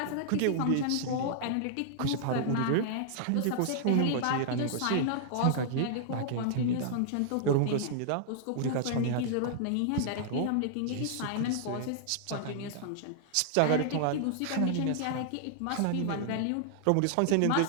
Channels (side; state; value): both; different; correlation -0.01